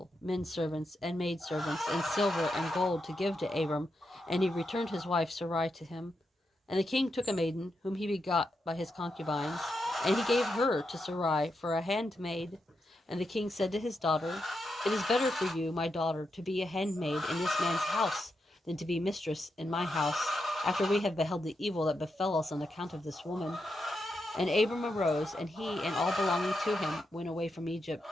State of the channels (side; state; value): both; normal; correlation 0.85